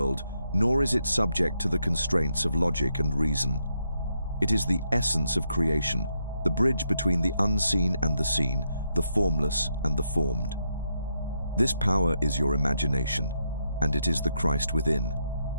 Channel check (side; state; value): both; inverted; correlation -0.80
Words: nor is it subject to the constraints of logic and reason. It is the essence of creation, the bridge between the unseen and the seen, the formless and the formed. This power is your imagination, and it is the Christ within,